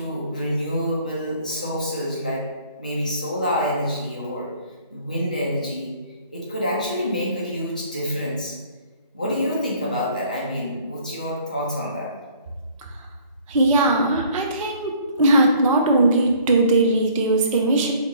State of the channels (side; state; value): both; inverted; correlation -0.57